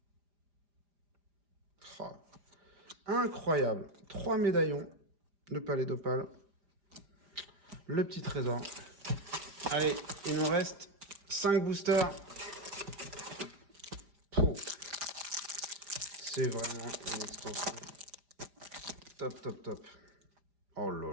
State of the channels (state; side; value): late; left; 4.9 ms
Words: Oh. Incroyable. 3 médaillons. Le palais d'opale. Le petit trésor. Allez, il nous reste 5 boosters. C'est vraiment une extension. Top, top, top. Oh là